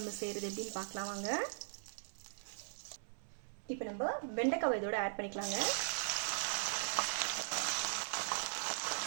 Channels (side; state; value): left; silent; 51 dB below the other